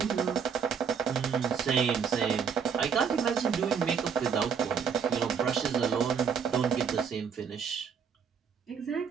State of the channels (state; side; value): quieter; left; 6.7 dB